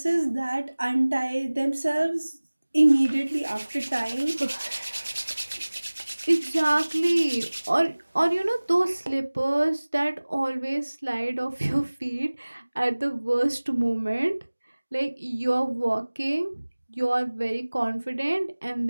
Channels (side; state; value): both; inverted; correlation -1.00